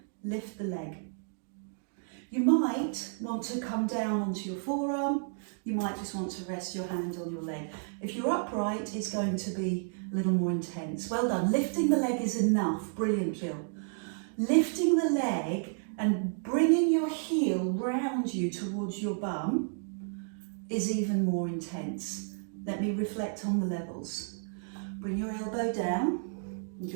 lift the leg. You might want to come down onto your forearm, you might just want to rest your hand on your leg. If you're upright, it's going to be a little more intense. Well done. Lifting the leg is enough. Brilliant, Jill. Lifting the leg and bringing your heel round you towards your bum is even more intense. Let me reflect on the levels. Bring your elbow down and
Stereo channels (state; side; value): silent; left; digital silence